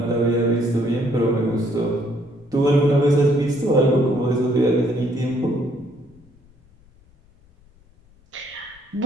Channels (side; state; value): left; noise; rumble, 29 dB below the sound